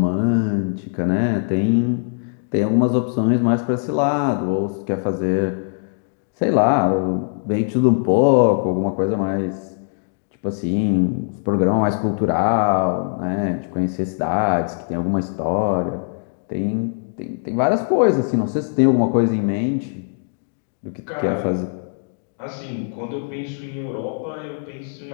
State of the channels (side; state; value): right; silent; digital silence